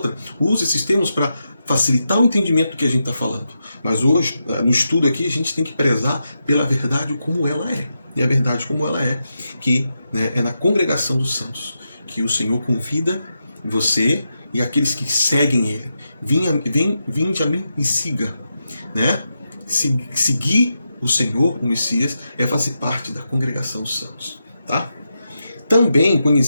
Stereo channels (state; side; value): inverted; both; correlation -0.86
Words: uso esses termos para facilitar o entendimento do que a gente está falando. Mas hoje, no estudo aqui, a gente tem que prezar pela verdade como ela é. E a verdade como ela é, que é na congregação dos santos, que o Senhor convida você e aqueles que seguem Ele. Vinde a mim e siga. Seguir o Senhor, o Messias, é fazer parte da congregação dos santos. Tá? Também